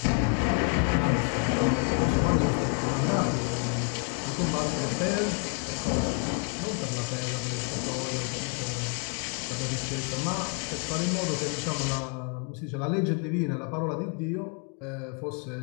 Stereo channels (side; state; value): right; quieter; 38.7 dB